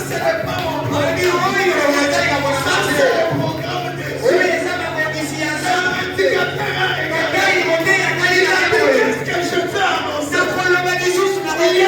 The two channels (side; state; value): both; identical; correlation 1.00